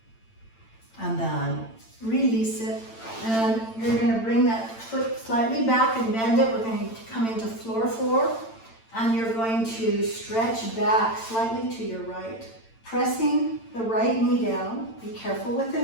And then release it. And you're going to bring that foot slightly back and bend it. We're going to come into floor 4. And you're going to stretch back slightly to your right, pressing the right knee down. Be careful with the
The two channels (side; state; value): right; late; 8.9 ms